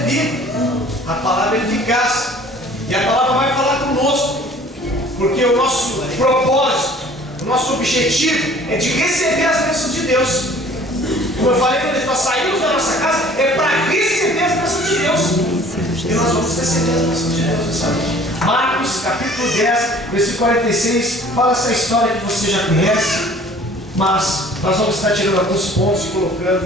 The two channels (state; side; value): normal; both; correlation 0.51